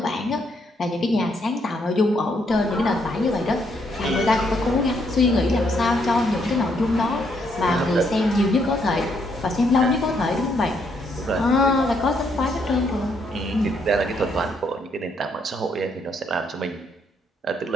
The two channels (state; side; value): normal; both; correlation 0.73